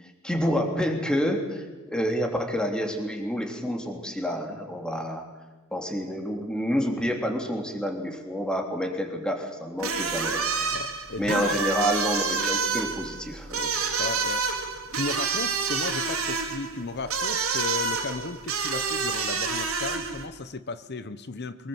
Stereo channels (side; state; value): both; normal; correlation 0.41